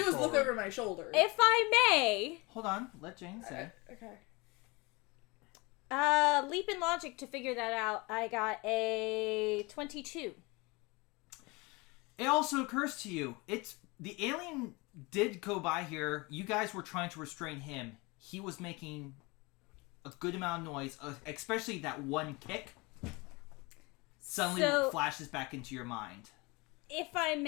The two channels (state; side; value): quieter; right; 25.7 dB